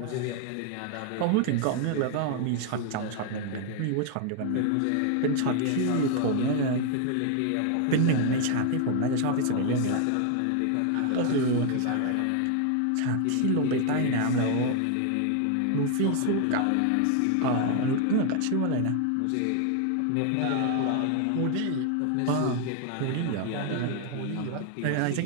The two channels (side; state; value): both; different; correlation 0.01